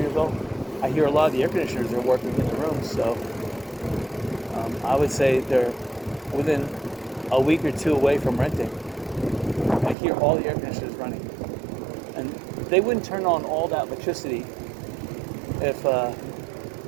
I hear a lot of the air conditioners are working in the rooms, so I would say they're within a week or two away from renting. I hear all the air conditioners running, and they wouldn't turn on all that electricity if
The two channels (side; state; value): left; drops out; at 10.0 s